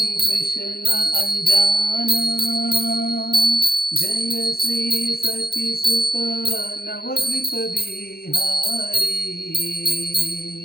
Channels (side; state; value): right; late; 0.45 ms